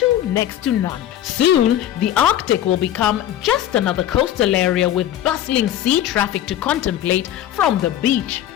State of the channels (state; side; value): quieter; right; 11.6 dB